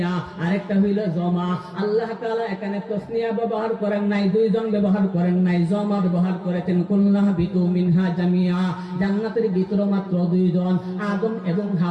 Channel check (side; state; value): both; identical; correlation 1.00